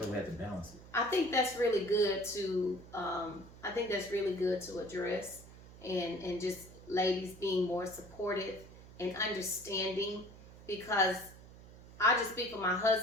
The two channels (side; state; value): right; noise; hum, 19 dB below the sound